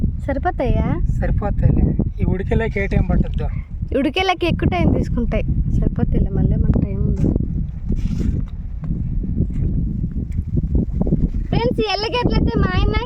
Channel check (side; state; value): both; identical; correlation 1.00